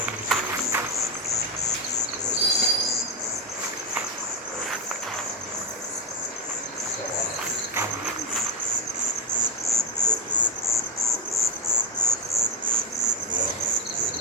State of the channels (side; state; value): both; normal; correlation 0.12